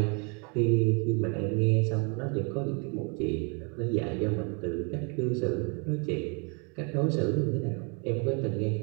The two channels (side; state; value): left; quieter; 35.2 dB